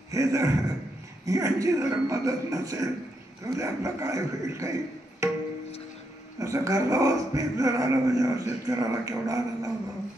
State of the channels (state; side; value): normal; both; correlation 0.80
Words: हे जर यांची जर मदत नसेल तर आपलं काय होईल? काही असं घरगावाच पीक जर आलं म्हणजे शेतकऱ्याला केवढा आनंद होतो.